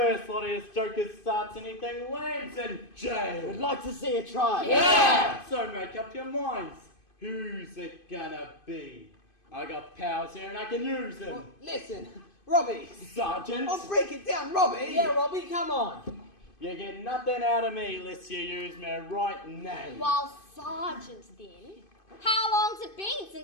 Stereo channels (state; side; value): late; right; 2.5 ms